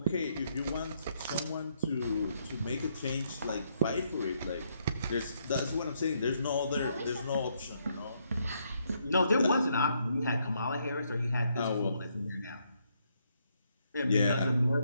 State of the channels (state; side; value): inverted; both; correlation -0.74